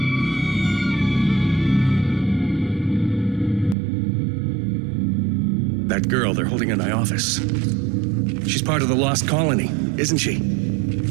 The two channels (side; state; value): left; drops out; at 3.8 s